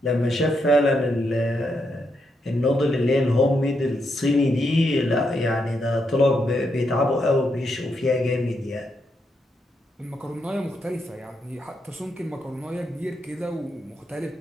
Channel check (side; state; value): both; normal; correlation 0.81